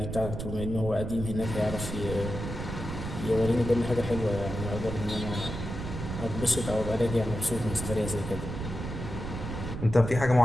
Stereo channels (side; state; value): right; noise; rumble, 6 dB below the sound